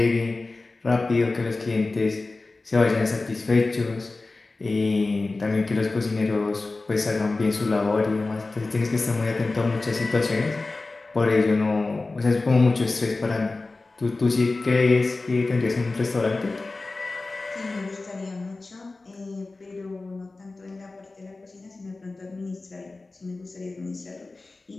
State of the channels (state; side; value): quieter; right; 3.4 dB